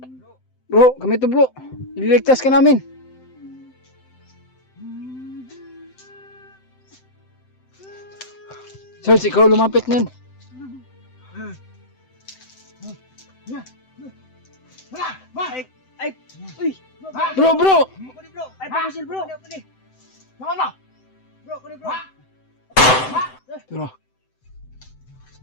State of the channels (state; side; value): late; right; 7.8 ms